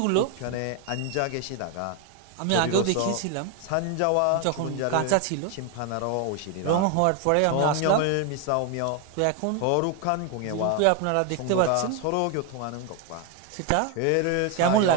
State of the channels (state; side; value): different; both; correlation 0.01